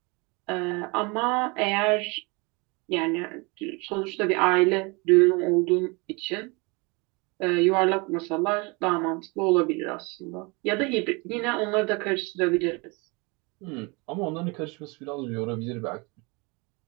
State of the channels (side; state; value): left; quieter; 28.3 dB